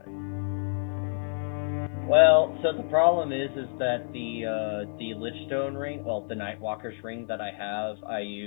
Well, so the problem is that the Lichstone ring, well, the Nightwalker's ring that I have, I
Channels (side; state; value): right; silent; 59 dB below the other